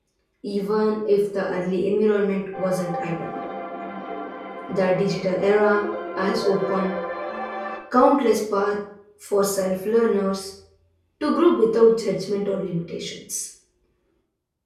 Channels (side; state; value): both; identical; correlation 1.00